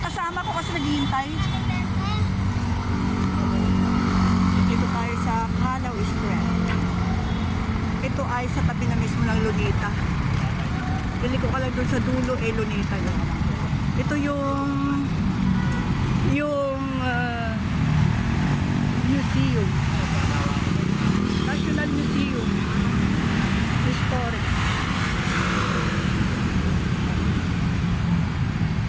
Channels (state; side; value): identical; both; correlation 1.00